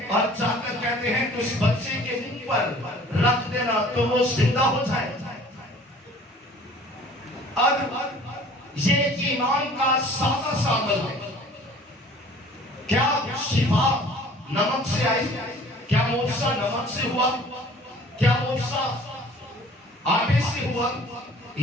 और जाकर कहते हैं कि उस बच्चे के मुंह पर रख देना तो वो जिंदा हो जाए। और ये ईमान का सादा सा अमल है। क्या शिफा नमक से आई? क्या मोसा नमक से हुआ? क्या मोसा आटे से हुआ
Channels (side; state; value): both; normal; correlation 0.50